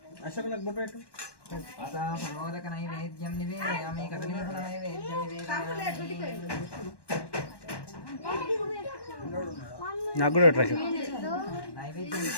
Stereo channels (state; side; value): late; right; 1.1 ms